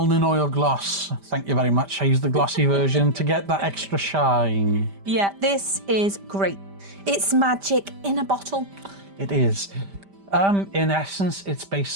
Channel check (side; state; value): left; late; 5.1 ms